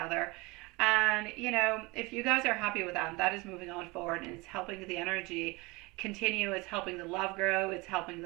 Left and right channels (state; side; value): quieter; left; 24.7 dB